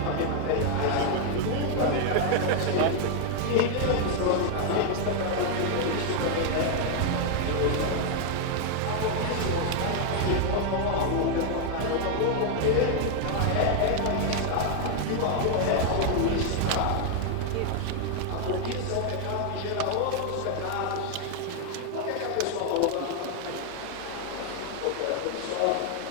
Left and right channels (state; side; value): different; both; correlation 0.00